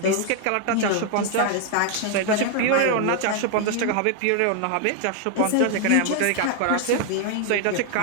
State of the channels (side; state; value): both; different; correlation 0.00